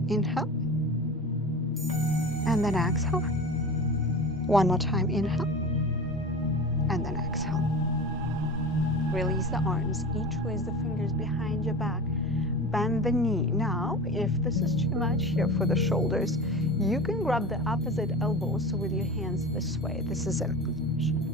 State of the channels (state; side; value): normal; both; correlation 0.33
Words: Inhale. And then exhale. One more time, inhale. And then exhale. Release the arms, interlace the fingers behind your back. Bend the knee. Now, if this is too much here for the shoulders, you can grab the opposite elbows with your hands this way. This is an option,